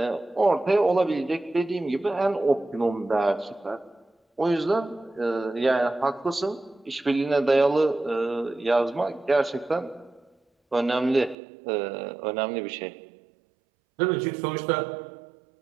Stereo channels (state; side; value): drops out; left; at 11.4 s